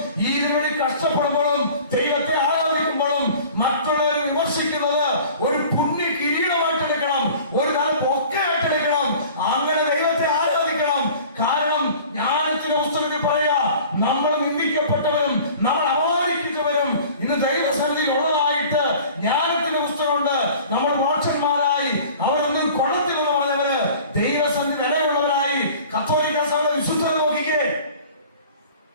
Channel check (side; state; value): both; inverted; correlation -0.45